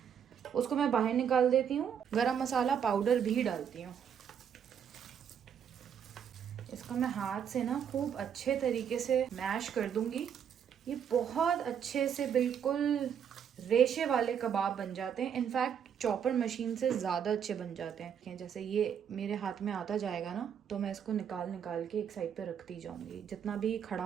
उसको मैं बाहर निकाल देती हूँ। गरम मसाला पाउडर भी डालती हूँ। इसको मैं हाथ से ना खूब अच्छे तरीके से मैश कर दूंगी। ये बहुत अच्छे से बिल्कुल रेशे वाले कबाब बन जाते हैं। इनफैक्ट चॉपर मशीन से ज़्यादा अच्छे बन जाते हैं। जैसे ये मेरे हाथ में आता जाएगा ना, तो मैं इसको निकाल निकाल के एक साइड पे रखती जाऊंगी, जितना भी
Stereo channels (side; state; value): left; quieter; 8.1 dB